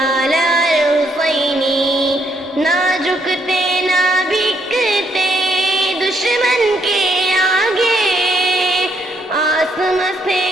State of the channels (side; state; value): both; normal; correlation 0.73